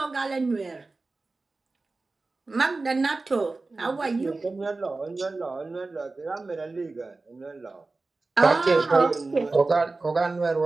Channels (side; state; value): left; quieter; 3.5 dB